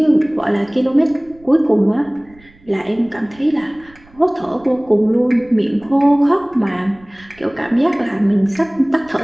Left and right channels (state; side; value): noise; right; rumble, 27 dB below the sound